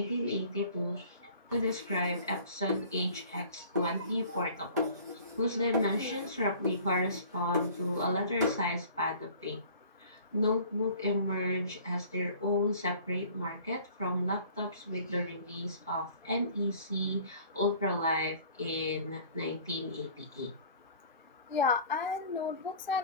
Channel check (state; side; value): inverted; both; correlation -0.49